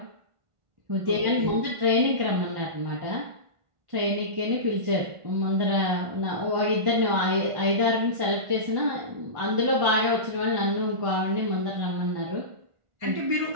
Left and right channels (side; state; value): left; late; 1.4 ms